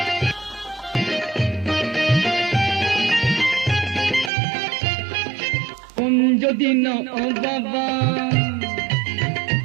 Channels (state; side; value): drops out; left; at 4.3 s